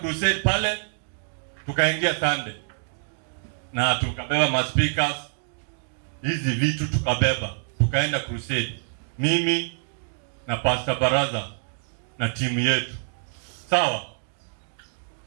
pale, tukaingia Sunday. Na tukabeba ma-speakers, hizi vitu tukabeba. Tukaenda crusade. Mimi na Pastor Baraza na timu yetu. Sawa?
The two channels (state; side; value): silent; left; digital silence